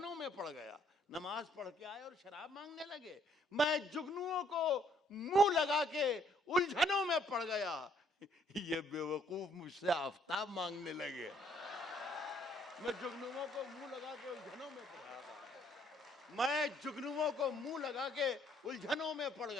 में पड़ गया। नमाज पढ़ के आए और शराब मांगने लगे। मैं जुगनुओं को मुंह लगा के उलझनों में पड़ गया। ये बेवकूफ मुझसे आफताब मांगने लगे। मैं जुगनुओं को मुंह लगा के उलझनों में पड़ गया। मैं जुगनुओं को मुंह लगा के उलझनों में पड़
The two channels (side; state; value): both; normal; correlation 0.66